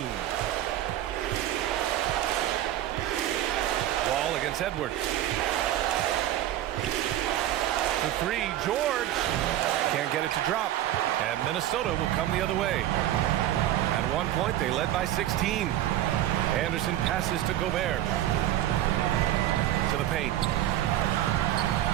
Wall against Edwards. The 3, George. Can't get it to drop. And Minnesota will come the other way. At one point, they led by 16. Anderson passes to Gobert. To the paint.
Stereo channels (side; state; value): left; quieter; 13.0 dB